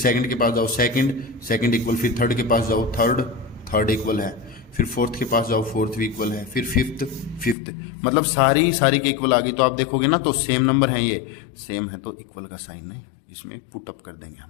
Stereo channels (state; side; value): drops out; right; at 7.6 s